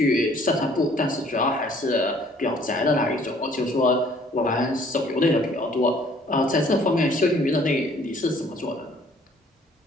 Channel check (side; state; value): both; normal; correlation 0.58